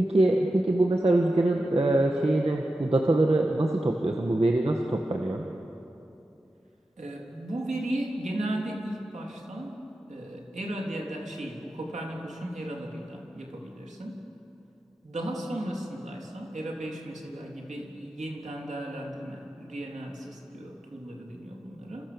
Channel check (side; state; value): both; normal; correlation 0.91